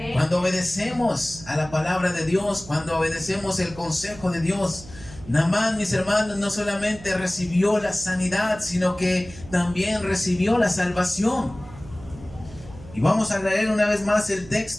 Cuando obedecemos a la palabra de Dios, cuando obedecemos el consejo de Dios. Naamán, mis hermanos, no solamente recibió la sanidad, sino que también recibió la salvación. Y vamos a leer una vez más el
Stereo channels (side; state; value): right; noise; hum, 18 dB below the sound